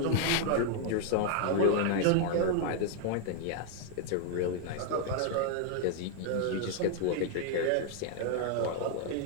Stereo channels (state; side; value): different; both; correlation 0.00